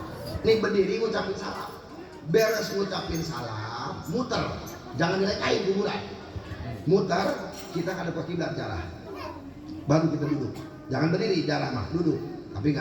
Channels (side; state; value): both; identical; correlation 1.00